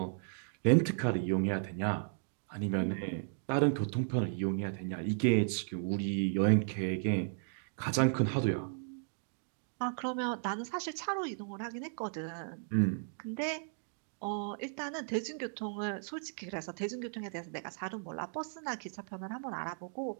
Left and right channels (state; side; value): silent; left; digital silence